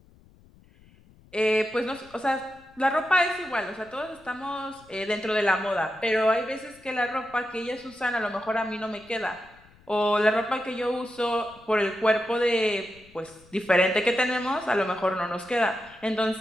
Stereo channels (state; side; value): noise; left; rumble, 27 dB below the sound